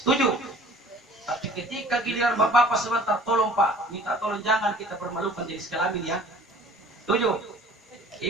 Setuju? Tapi ketika giliran bapak-bapak sebentar, tolong Pak, minta tolong jangan kita permalukan jenis kelamin ya. Setuju?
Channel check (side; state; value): both; normal; correlation 0.50